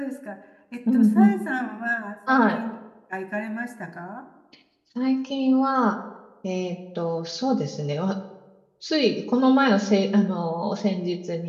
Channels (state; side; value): identical; both; correlation 1.00